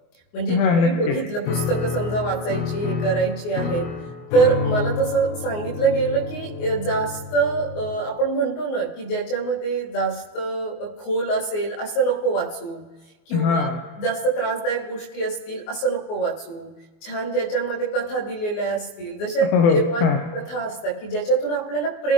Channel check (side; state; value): right; late; 24 ms